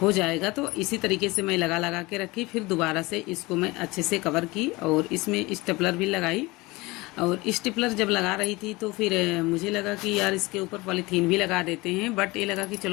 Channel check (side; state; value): right; quieter; 22.4 dB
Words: हो जाएगा। तो इसी तरीके से मैं लगा लगा के रखी। फिर दोबारा से इसको मैं अच्छे से कवर की और इसमें स्टेपलर भी लगाई। और स्टेपलर जब लगा रही थी तो फिर मुझे लगा कि यार इसके ऊपर पॉलीथीन भी लगा देते हैं, बट ये लगा कि